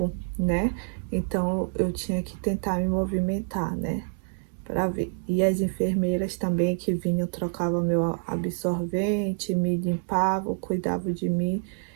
né? Então, eu tinha que tentar me movimentar, né? Para ver. E as enfermeiras também que vinham, trocavam meu absorvente, me limpavam, cuidavam de mim.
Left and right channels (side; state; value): left; silent; 60 dB below the other